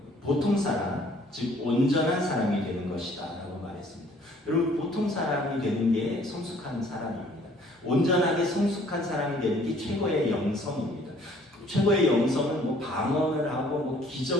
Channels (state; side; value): normal; both; correlation 0.58